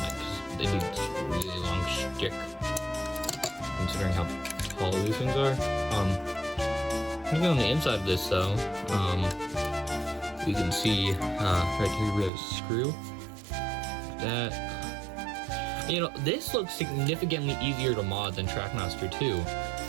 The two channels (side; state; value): left; drops out; at 12.3 s